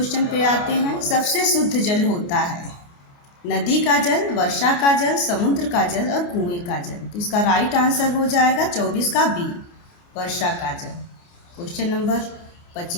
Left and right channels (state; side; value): late; right; 29 ms